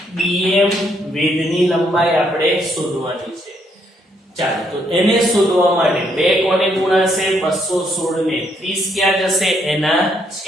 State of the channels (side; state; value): both; normal; correlation 0.72